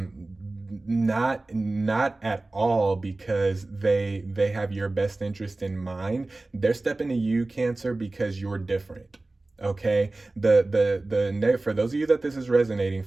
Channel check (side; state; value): left; quieter; 3.0 dB